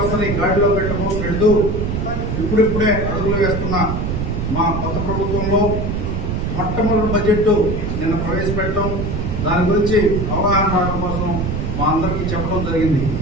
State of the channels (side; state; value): right; noise; rumble, 2 dB below the sound